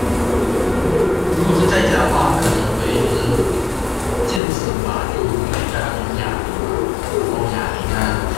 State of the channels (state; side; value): drops out; right; at 4.4 s